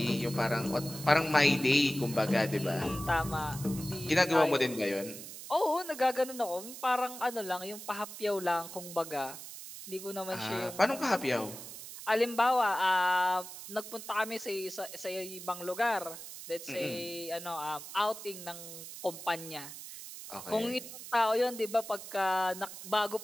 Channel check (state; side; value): noise; right; hiss, 12 dB below the sound